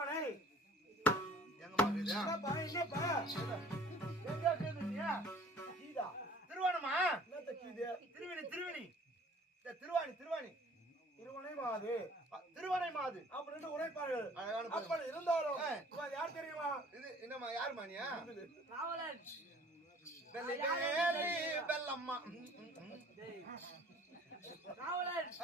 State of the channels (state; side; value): normal; both; correlation 0.51